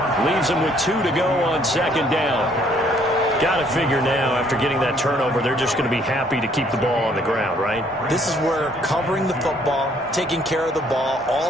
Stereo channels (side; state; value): both; normal; correlation 0.64